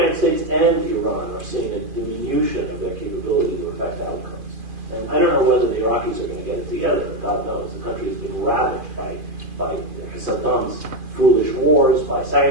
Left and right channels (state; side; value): late; left; 2.5 ms